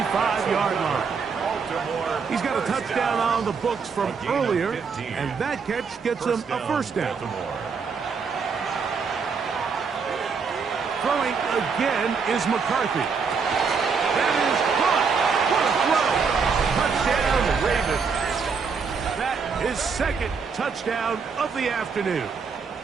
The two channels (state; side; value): quieter; left; 5.5 dB